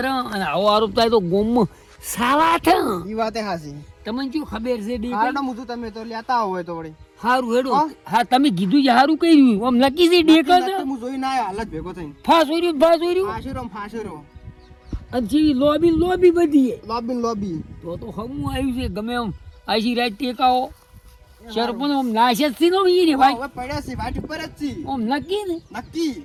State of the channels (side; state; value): both; identical; correlation 1.00